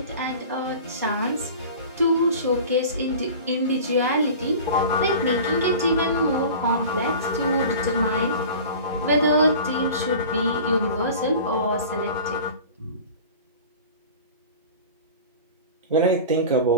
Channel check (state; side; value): inverted; both; correlation -0.38